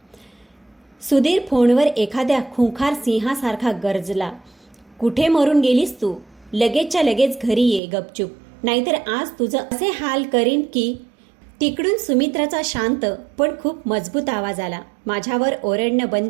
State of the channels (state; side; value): drops out; left; at 7.8 s